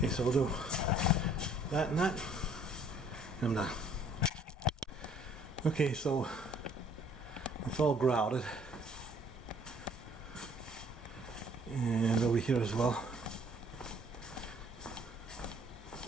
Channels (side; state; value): both; normal; correlation 0.58